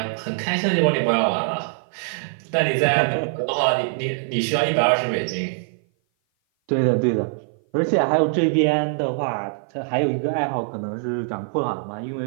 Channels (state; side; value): silent; left; 56 dB below the other